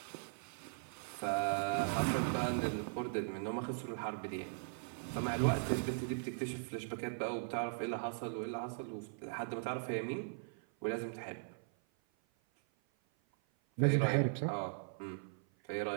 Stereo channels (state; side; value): silent; left; 52 dB below the other